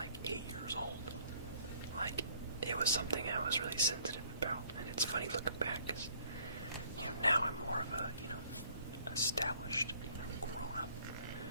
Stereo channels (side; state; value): both; inverted; correlation -0.61